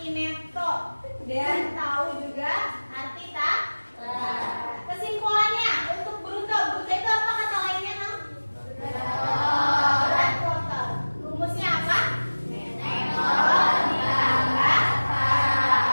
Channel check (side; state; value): both; inverted; correlation -1.00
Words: neto, dan tahu juga arti tak. Kesimpulannya untuk bruto, bruto itu apa kata lainnya, Nam? Berat total. Rumusnya apa? Neto ditambah tara.